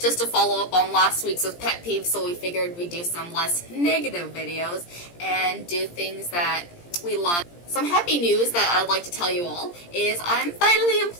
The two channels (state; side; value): late; right; 17 ms